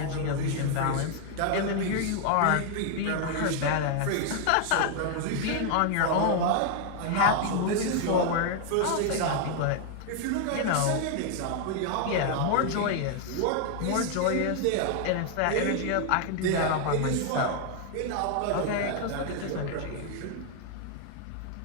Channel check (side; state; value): both; different; correlation 0.00